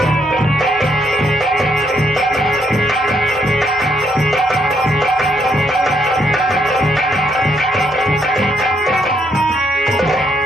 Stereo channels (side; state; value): both; normal; correlation 0.74